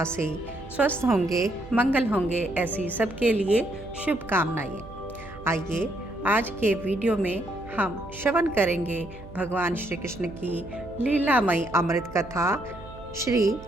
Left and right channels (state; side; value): noise; right; hum, 17 dB below the sound